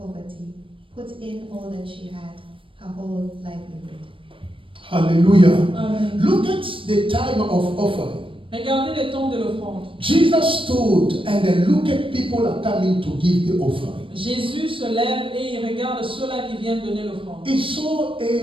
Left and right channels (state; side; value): late; left; 0.25 ms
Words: put in all that she had, her whole livelihood. Hallelujah. Amen. Look at the time of offering. Regardez les temps de l'offrande. Jesus stood and then look at people are coming to give the offering. Jésus se lève et il regarde ceux-là qui viennent donner l'offrande. He saw